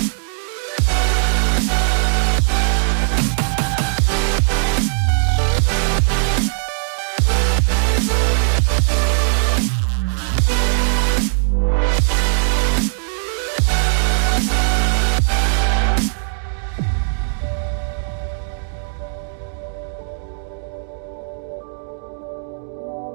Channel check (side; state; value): left; silent; digital silence